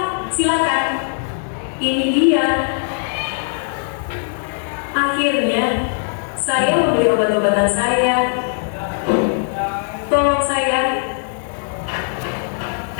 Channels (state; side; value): silent; right; 63 dB below the other